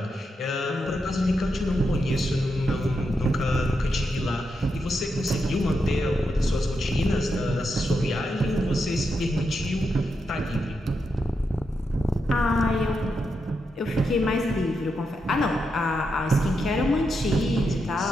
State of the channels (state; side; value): normal; both; correlation 0.85